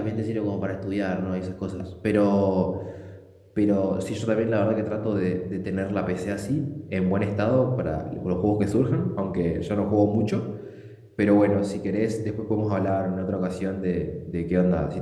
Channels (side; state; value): both; identical; correlation 1.00